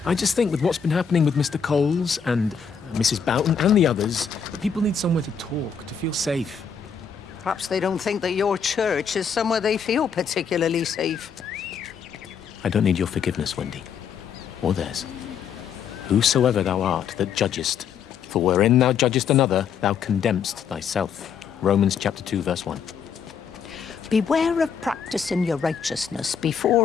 I just think with what's been happening with Mr. Coles and Mrs. Boughton and the others, that people need somewhere to talk, to feel safe. Perhaps they don't think that your church is somewhere they feel particularly safe. I don't need your forgiveness, Wendy. Or theirs. Whosoever thou art that judgest, for wherein thou judgest another, thou condemnest thyself. Romans chapter 2, verse 1. Beware of practicing your righteousness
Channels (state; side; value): quieter; right; 6.8 dB